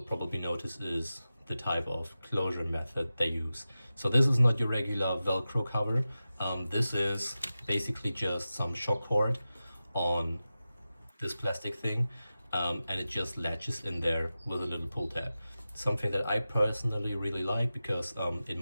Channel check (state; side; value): inverted; both; correlation -0.94